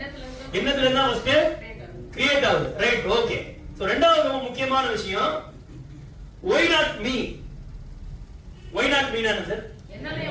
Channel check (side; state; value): both; identical; correlation 1.00